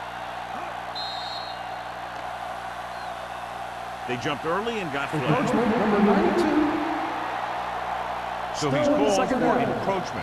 They jumped early and got flagged. Number 92. So he's called for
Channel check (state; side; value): identical; both; correlation 1.00